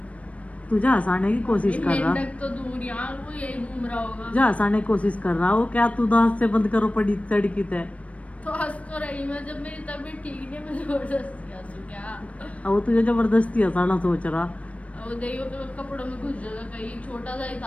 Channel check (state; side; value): late; right; 0.065 ms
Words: तुझे हंसाने की कोशिश कर रहा, तो दूर यहाँ वो यही घूम रहा होगा। जा हंसाने की कोशिश कर रहा हो क्या? तू दांत से बंद करो पड़ी तड़की तय। तो हंस तो रही मैं, जब मेरी तबीयत ठीक नहीं, मैं जबरदस्ती हंसू क्या? अब वो तुझे जबरदस्ती हंसाना सोच रहा। वो देखियो तो कपड़ों में घुस जाएगा कहीं, छोटा सा ही